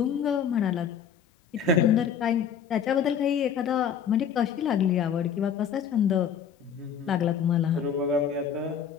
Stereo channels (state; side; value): quieter; right; 7.5 dB